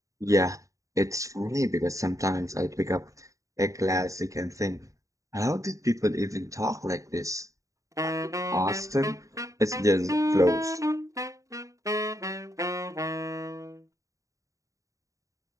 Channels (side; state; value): left; late; 0.16 ms